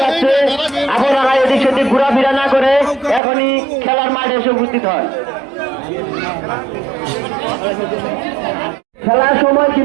যাচ্ছে। আপনারা এদিক সেদিক ঘোরাফেরা না করে এখনই খেলার মাঠে এসে উপস্থিত হন। খেলার সময়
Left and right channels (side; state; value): left; drops out; at 3.2 s